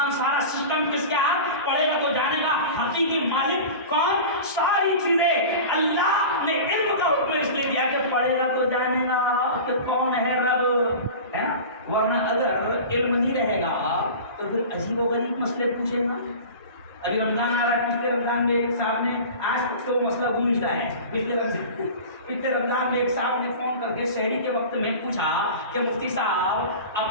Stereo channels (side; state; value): both; inverted; correlation -0.34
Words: سارا سسٹم کس کے ہاتھ، پڑھے گا تو جانے گا حقیقی مالک کون۔ ساری چیزیں اللہ نے علم کا حکم اس لیے دیا کہ پڑھے گا تو جانے گا کہ کون ہے رب، ہے نا۔ ورنہ اگر علم نہیں رہے گا تو پھر عجیب و غریب مسئلے پوچھے گا، ابھی رمضان آ رہا ہے، پچھلے رمضان میں ایک صاحب نے، آج تک تو مسئلہ گونجتا ہے، پچھلے رمضان میں ایک صاحب نے فون کر کے شہری کے وقت میں پوچھا کہ مفتی صاحب